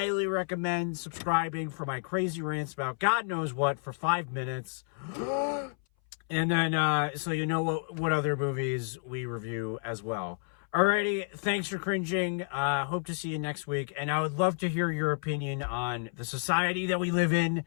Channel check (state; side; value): silent; right; 57 dB below the other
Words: recommend subscribing for my crazy rants about God knows what for 5 minutes. And then, so you know what other movies we review as well. Alrighty, thanks for cringing. Hope to see you next week. And I would love to hear your opinion on the society that we live in